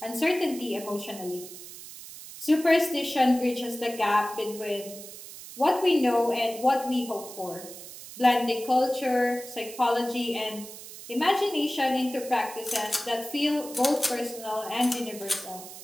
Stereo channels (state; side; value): noise; right; hiss, 14 dB below the sound